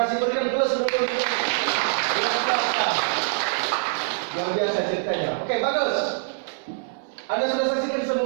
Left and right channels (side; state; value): left; silent; 59 dB below the other